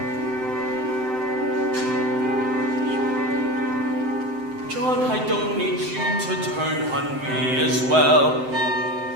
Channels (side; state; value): left; late; 7.8 ms